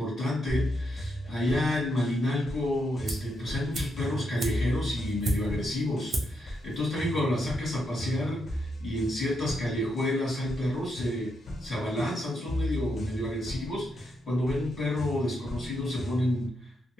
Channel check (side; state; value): both; normal; correlation 0.81